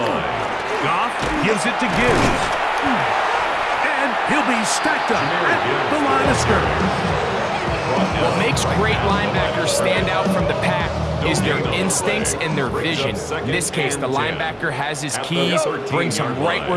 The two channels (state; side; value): identical; both; correlation 1.00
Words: Goff gives it to Gibbs. And he'll be stacked up at the line of scrimmage. What makes great linebackers stand out from the pack is their instincts and their vision. In this case, the linebacker has his keys, brings him right